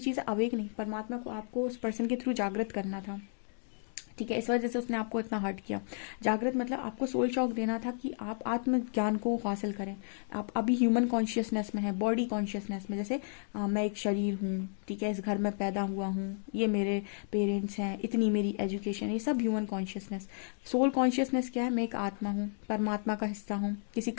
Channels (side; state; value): right; silent; 56 dB below the other